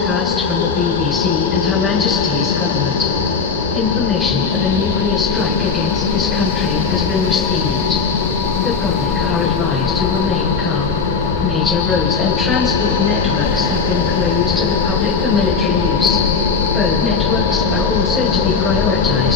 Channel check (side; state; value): right; quieter; 5.3 dB